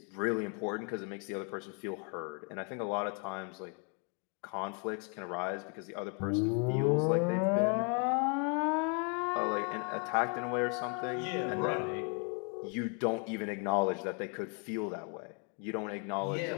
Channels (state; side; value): quieter; right; 37.8 dB